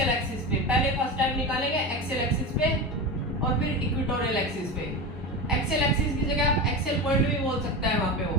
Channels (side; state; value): both; normal; correlation 0.23